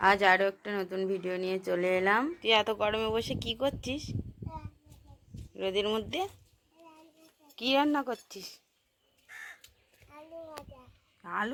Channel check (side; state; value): both; identical; correlation 1.00